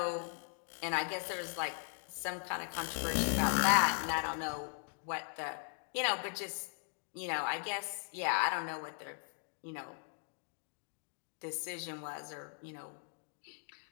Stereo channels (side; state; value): right; silent; 52 dB below the other